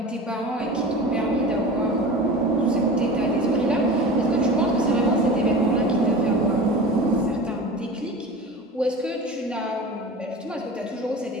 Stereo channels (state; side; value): normal; both; correlation 0.34